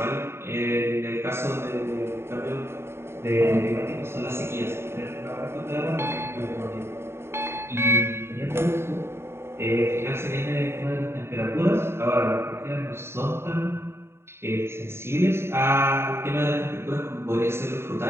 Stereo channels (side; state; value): left; late; 0.12 ms